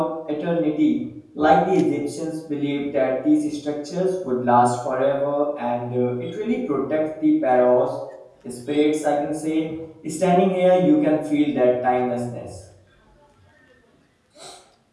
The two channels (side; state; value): both; identical; correlation 1.00